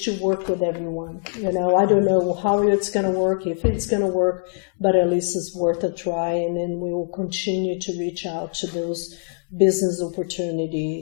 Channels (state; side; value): silent; right; 64 dB below the other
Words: to work with everyone. I don't know how it's going to work, if it's going to work, but at least it's worth a try, and then we will continue to reach out to those business